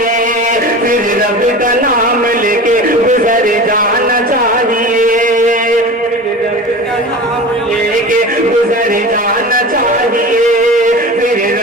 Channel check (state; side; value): normal; both; correlation 0.33